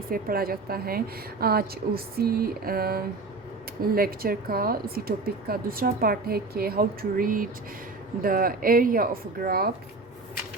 पढ़ा जाता है। आज उसी लेक्चर का, उसी टॉपिक का दूसरा पार्ट है कि how to read the area of graph.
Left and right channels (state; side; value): quieter; left; 3.6 dB